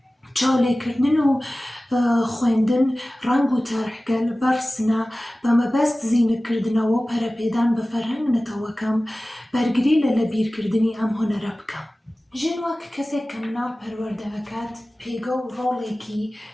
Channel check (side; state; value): both; normal; correlation 0.97